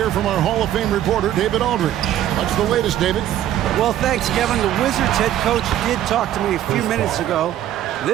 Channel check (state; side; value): quieter; left; 12.0 dB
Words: from our Hall of Fame reporter, David Aldridge. What's the latest, David? Well, thanks, Kevin. The Wizards head coach did talk to me a few minutes ago.